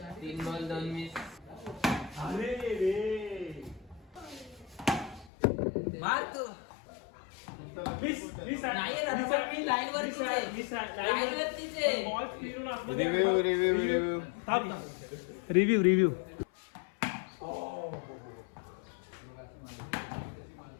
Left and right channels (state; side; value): drops out; right; at 5.3 s